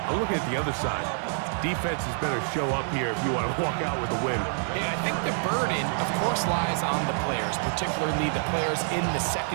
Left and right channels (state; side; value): silent; left; 60 dB below the other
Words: I'm looking at the other side. Defenses better show up here if you want to walk out with a win. Yeah, I think the burden, of course, lies on the players, particularly the players in the